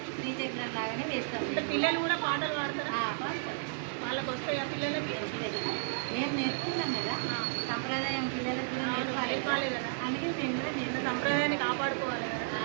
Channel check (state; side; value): silent; left; 55 dB below the other